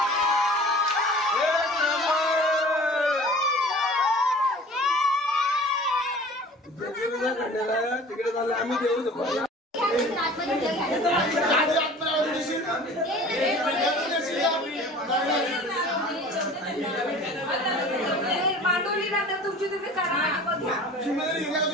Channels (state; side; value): normal; both; correlation 0.44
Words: तिकडे झालं आम्ही देऊ शकतो. मांडवली नंतर तुमची तुम्ही करा.